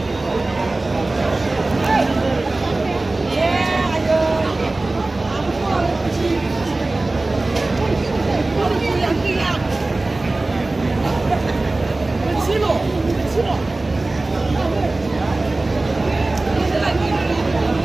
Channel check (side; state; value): left; quieter; 3.0 dB